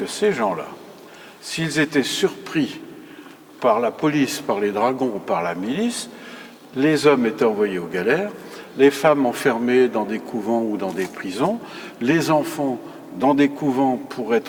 ces gens-là, s'ils étaient surpris par la police, par les dragons ou par la milice, les hommes étaient envoyés aux galères, les femmes enfermées dans des couvents ou dans des prisons, les enfants dans des couvents pour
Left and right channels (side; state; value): both; identical; correlation 1.00